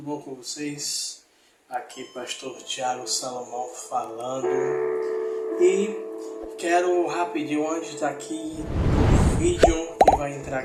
bom com vocês? Aqui pastor Tiago Salomão falando. E quero rapidinho, antes daqui do vídeo que vai entrar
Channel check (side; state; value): both; identical; correlation 1.00